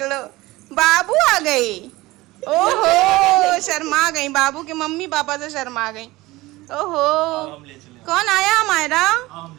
लो, बाबू आ गई। ओहो शर्मा गई, बाबू के मम्मी पापा से शर्मा गई। ओहो कौन आया हमारा?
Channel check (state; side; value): quieter; left; 19.6 dB